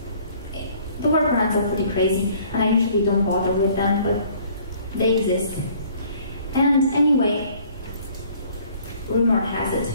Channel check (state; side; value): inverted; both; correlation -0.57